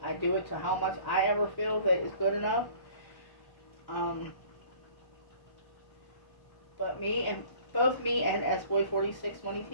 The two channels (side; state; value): right; late; 1.1 ms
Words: do it to how much I ever feel that is good enough. But both me and S-Boy46 Money